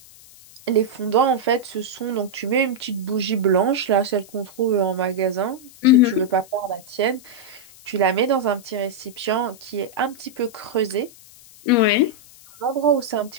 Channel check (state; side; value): noise; left; hiss, 22 dB below the sound